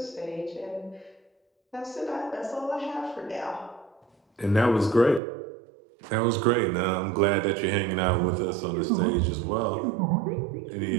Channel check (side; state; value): left; drops out; at 5.2 s